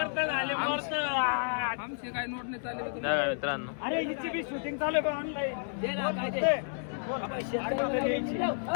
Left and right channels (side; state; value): right; silent; 57 dB below the other